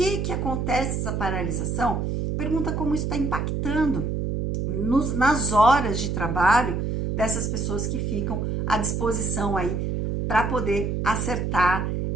acontece essa paralisação? Pergunta como isso está impactando nas horas de trabalho dessas pessoas que ficam à disposição aí para poder acertar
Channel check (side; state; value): right; noise; hum, 1 dB below the sound